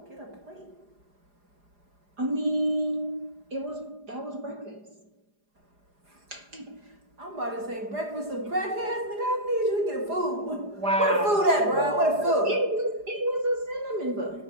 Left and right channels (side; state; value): left; late; 4.9 ms